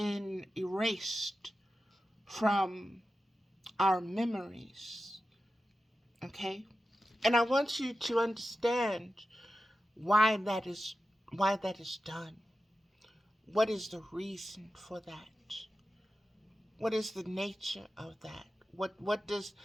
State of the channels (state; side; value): normal; both; correlation 0.93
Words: erased from our memories. Okay? And I want you to understand why that is done. What is the reason for that? What is the nature of that? What is